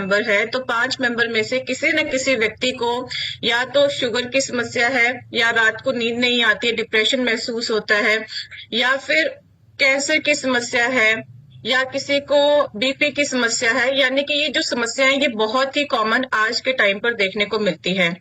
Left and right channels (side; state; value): both; identical; correlation 1.00